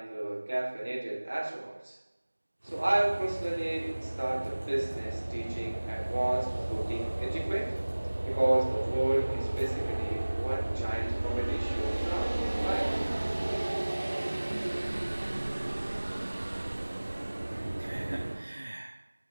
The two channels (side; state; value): both; inverted; correlation -1.00